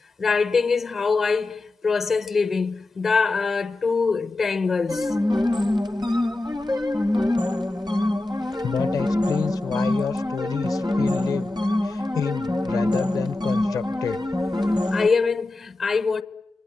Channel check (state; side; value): quieter; right; 3.0 dB